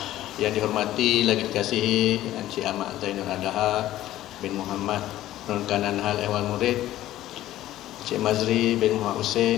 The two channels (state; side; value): quieter; right; 14.2 dB